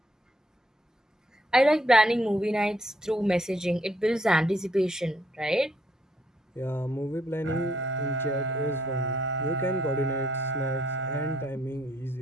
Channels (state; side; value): normal; both; correlation 0.70